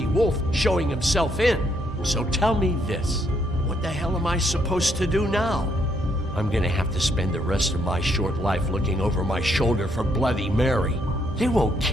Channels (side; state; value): both; normal; correlation 0.73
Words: Wolf showing himself in. So tell me this. What the hell am I supposed to do now? I'm going to have to spend the rest of my short life looking over my shoulder for Bloody Mary. They won't